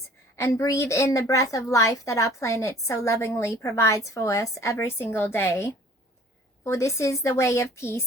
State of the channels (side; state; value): both; normal; correlation 0.51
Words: and breathe in the breath of life that our planet so lovingly provides for us every single day. For this is the way of